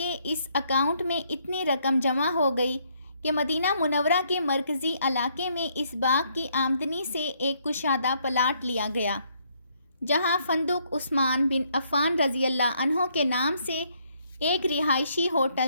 اس اکاؤنٹ میں اتنی رقم جمع ہو گئی کہ مدینہ منورہ کے مرکزی علاقے میں اس باغ کی آمدنی سے ایک کشادہ پلاٹ لیا گیا، جہاں فندق عثمان بن عفان رضی اللہ عنہ کے نام سے ایک رہائشی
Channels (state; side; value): inverted; both; correlation -0.70